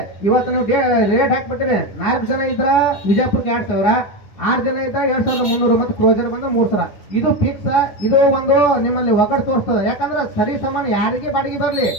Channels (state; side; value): late; right; 9.8 ms